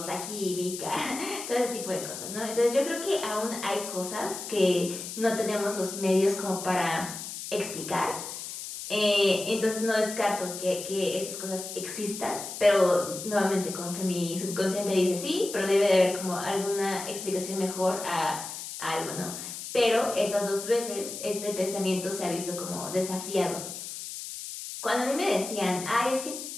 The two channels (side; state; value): left; noise; hiss, 8 dB below the sound